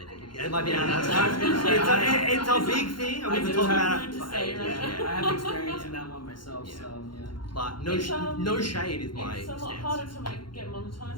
think. It might be outside. It's a big thing. and I We've been do talking have about it. to say, right? Yeah, I have experience in that one myself, Yeah. so yeah. But no, It's, no shade is my It's a lot stance. harder to get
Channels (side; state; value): right; late; 0.72 ms